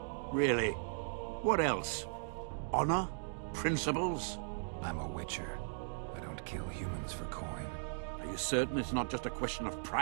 Really? What else? Honor? Principles? I'm a witcher. I don't kill humans for coin. Are you certain it's not just a question of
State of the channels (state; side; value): silent; left; digital silence